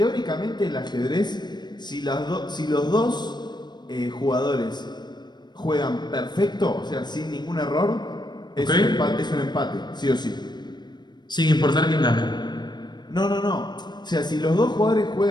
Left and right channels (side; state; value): right; late; 0.21 ms